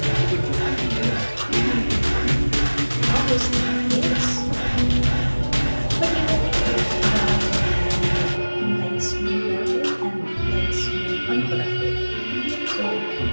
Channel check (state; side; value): inverted; both; correlation -1.00